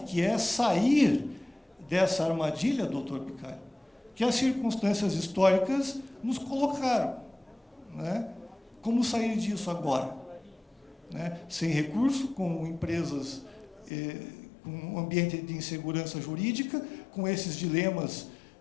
que é sair dessa armadilha, doutor Bicalho, que as circunstâncias históricas nos colocaram, né? Como sair disso agora? Né? Sem recurso, com empresas, com um ambiente de insegurança jurídica, com esses dilemas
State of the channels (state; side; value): drops out; right; at 13.9 s